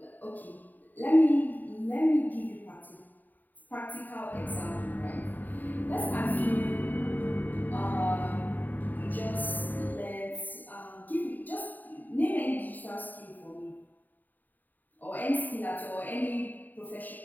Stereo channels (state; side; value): late; right; 0.087 ms